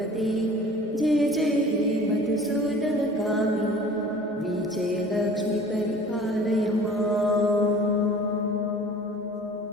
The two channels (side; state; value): both; normal; correlation 0.45